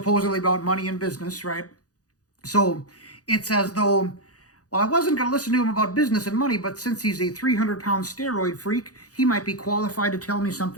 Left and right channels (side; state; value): right; late; 0.67 ms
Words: about money and business, right? So it's as though, well, I wasn't going to listen to him about business and money, but since he's a 300-pound steroid freak, he might be qualified to tell me